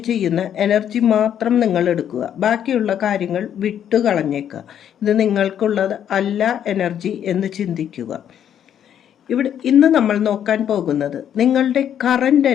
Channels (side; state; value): right; quieter; 9.6 dB